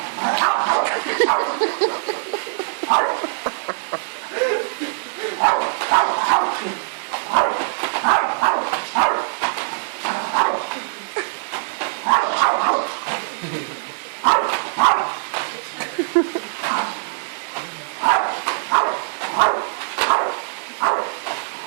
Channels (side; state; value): left; silent; digital silence